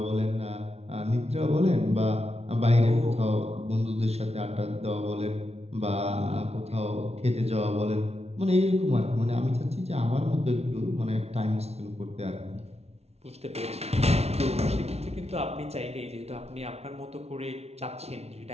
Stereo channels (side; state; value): left; late; 0.31 ms